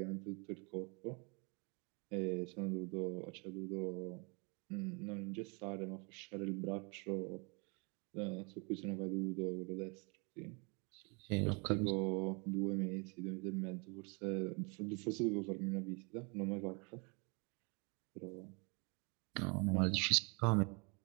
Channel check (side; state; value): left; quieter; 32.4 dB